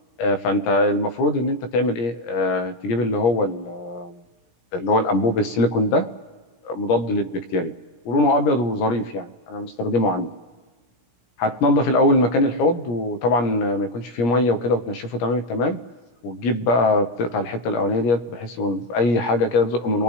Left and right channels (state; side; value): late; right; 17 ms